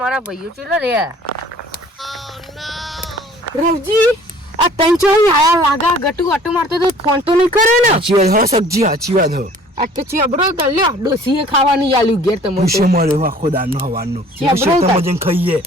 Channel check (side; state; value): both; normal; correlation 0.52